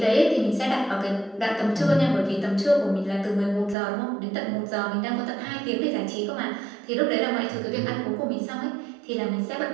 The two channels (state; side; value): drops out; left; at 3.8 s